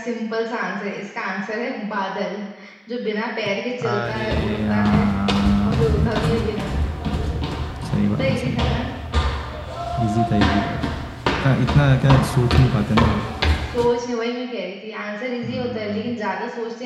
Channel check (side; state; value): both; identical; correlation 1.00